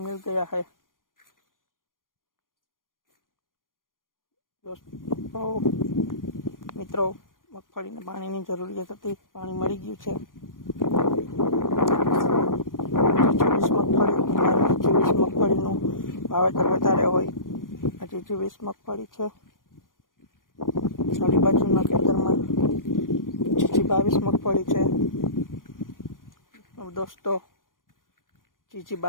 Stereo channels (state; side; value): late; right; 0.90 ms